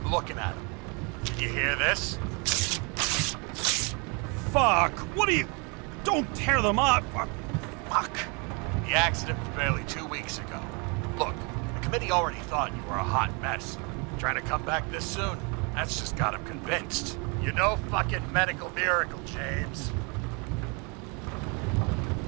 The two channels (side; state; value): left; quieter; 32.2 dB